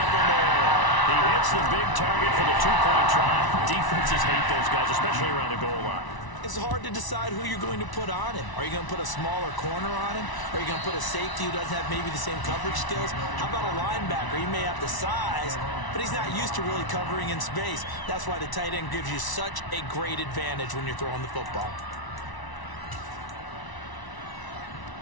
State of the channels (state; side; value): late; right; 1.0 ms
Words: more. He hits the big target for the 2-point try. Defenses hate those guys, especially around the goal line. It's hard to decide who you're going to put on him. Are you going to put a smaller corner on him? Are you going to put a safety who doesn't have maybe the same coverage skills? How about a linebacker? He may have the size, but he's not used to really covering in space. That's why the tight end gives you such a great advantage when you're throwing the football.